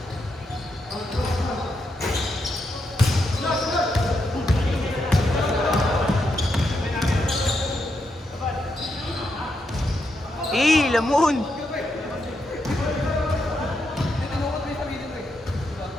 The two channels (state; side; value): normal; both; correlation 0.82